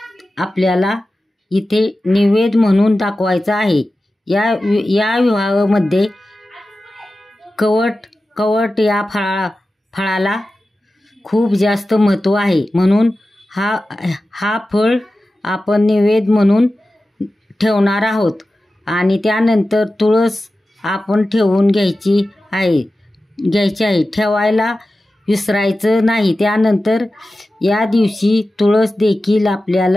आपल्याला इथे नैवेद्य म्हणून दाखवायचा आहे. या विवाहामध्ये कवट या फळाला खूप जास्त महत्त्व आहे. म्हणून हा फळ आपण नैवेद्य म्हणून ठेवणार आहोत. आणि त्यानंतर तुळस आपण ठेवून घ्यायची आहे. ठेवायला विसरायचं नाही. त्यानंतर या दिवशी तुळस देखील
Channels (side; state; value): both; normal; correlation 0.94